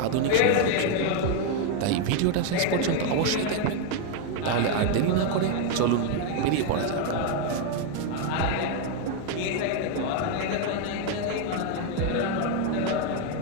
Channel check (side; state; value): both; different; correlation 0.01